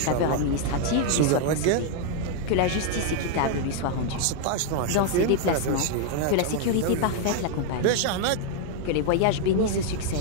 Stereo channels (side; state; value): both; different; correlation 0.00